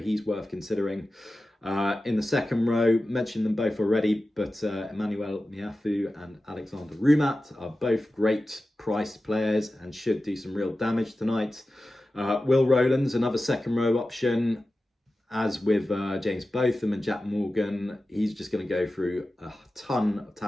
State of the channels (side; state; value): both; normal; correlation 0.94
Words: worth considering. In the second row, mentioned them both already, but Emmanuel Miafu and Alexander Rumat are both great priced players and should do some real damage tonight. Will Rowlands, another second row option. As with James Botham and Jack Morgan, he's just going to go through a ton of